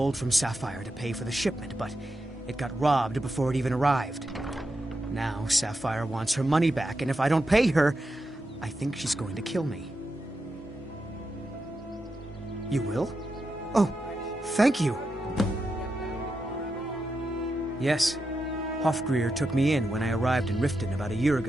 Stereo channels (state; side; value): normal; both; correlation 0.87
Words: from Sapphire to pay for the shipment, but it got robbed before it even arrived. Now Sapphire wants her money back, and if I don't pay her, I think she's going to kill me. You will? Oh, thank you. Yes, Hofgreer took me in when I arrived in Riften about a year